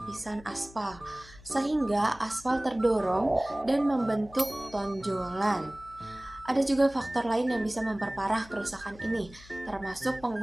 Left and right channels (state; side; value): noise; left; hum, 21 dB below the sound